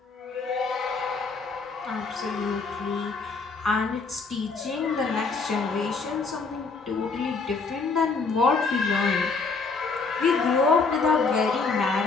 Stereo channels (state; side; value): quieter; right; 4.4 dB